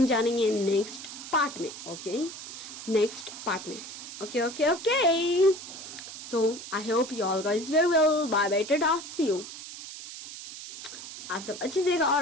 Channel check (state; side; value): noise; right; hiss, 11 dB below the sound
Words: जानेंगे नेक्स्ट पार्ट में, ओके, नेक्स्ट पार्ट में। Okay okay okay, so I hope you all guys very well, bye bye, tata, see you. आप सब अच्छे से रहिएगा